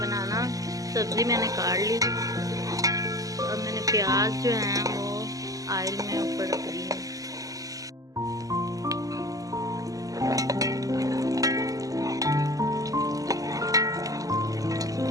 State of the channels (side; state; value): left; late; 0.17 ms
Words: बनाना। सब्ज़ी मैंने काट ली। अब मैंने प्याज जो है वो ऑयल में ऊपर रख दी है।